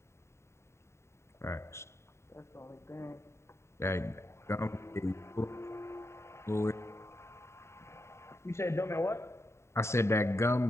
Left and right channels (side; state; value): right; late; 0.13 ms